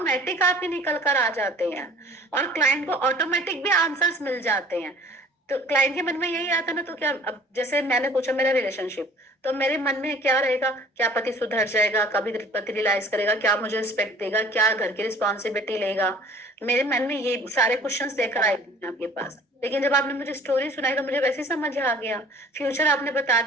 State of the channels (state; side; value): normal; both; correlation 0.49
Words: आपके निकल कर आ जाते हैं, और क्लाइंट को ऑटोमेटिक भी आंसर्स मिल जाते हैं। तो क्लाइंट के मन में यही आता ना, तो क्या, अब जैसे मैंने पूछा मेरा रिलेशनशिप, तो मेरे मन में क्या रहेगा, क्या पति सुधर जाएगा, कभी पति रियलाइज करेगा, क्या मुझे रिस्पेक्ट देगा, क्या घर की रिस्पॉन्सिबिलिटी लेगा, मेरे मन में ये सारे क्वेश्चंस लेकर आए थे आपके पास। लेकिन जब आपने मुझे स्टोरी सुनाई तो मुझे वैसे ही समझ आ गया, फ्यूचर आपने बता